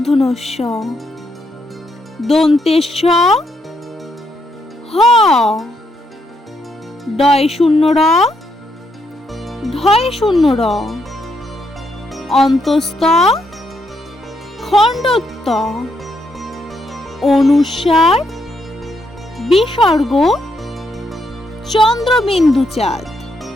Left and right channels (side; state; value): both; normal; correlation 0.77